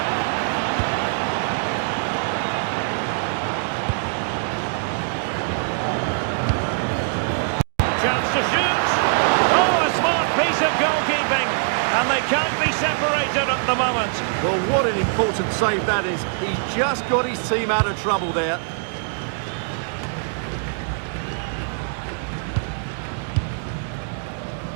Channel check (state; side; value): silent; left; digital silence